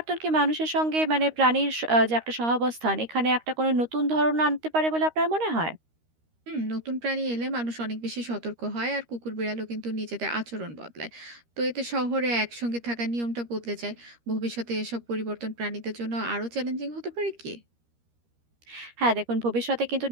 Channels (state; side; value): late; left; 13 ms